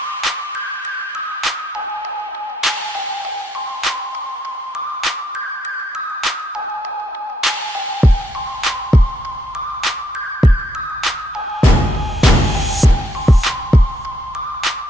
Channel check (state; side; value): normal; both; correlation 0.73